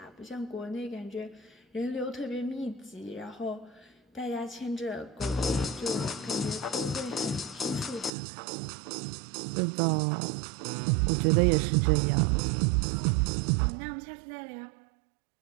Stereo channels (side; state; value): left; drops out; at 8.1 s